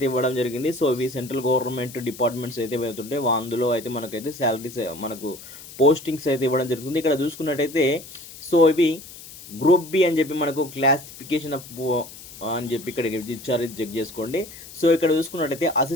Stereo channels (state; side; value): noise; left; hiss, 16 dB below the sound